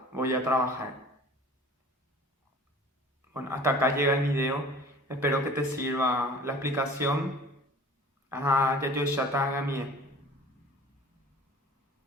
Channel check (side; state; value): both; normal; correlation 0.45